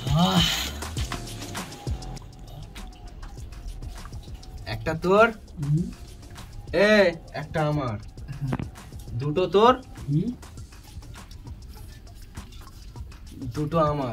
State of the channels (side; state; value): both; identical; correlation 1.00